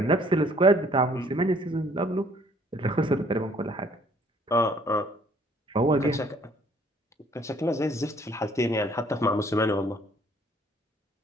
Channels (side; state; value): both; normal; correlation 0.60